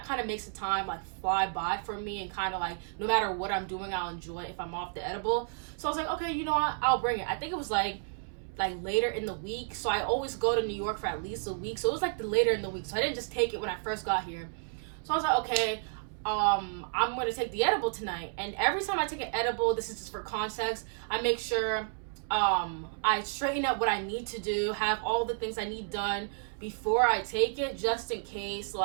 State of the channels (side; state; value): left; silent; 57 dB below the other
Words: kind of makes the time like fly by for me, and kind of like no matter what I'm doing, I'll enjoy it if I'm off the edible. So I was like, okay, you know what, I'll bring it. I think it was like later in the week, so I always go to New York for at least a week, so it was like the later in the week, so I didn't just take it when I first got here. So I was like, okay, I'm gonna take the edible tonight. And every time I take an edible, this is just for context, I make sure I straighten up what I need to do, have all the things I need done before I take it, just in case